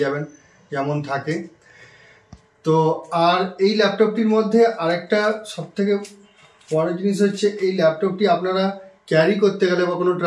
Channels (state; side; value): identical; both; correlation 1.00